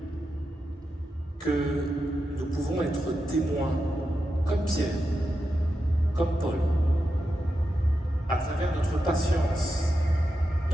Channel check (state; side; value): normal; both; correlation 0.88